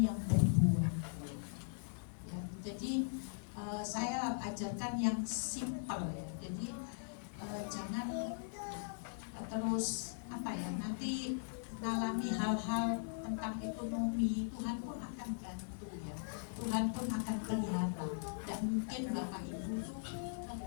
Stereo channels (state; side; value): silent; right; digital silence